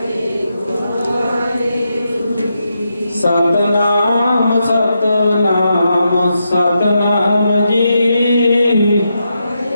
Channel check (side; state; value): both; inverted; correlation -0.84